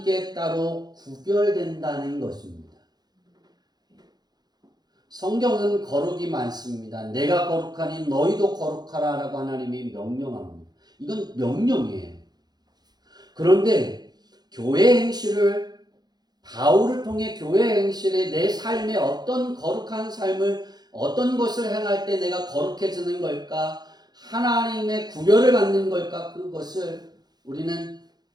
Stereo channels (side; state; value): left; late; 0.20 ms